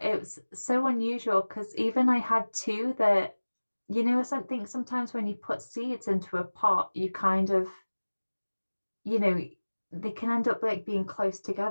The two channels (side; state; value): both; inverted; correlation -1.00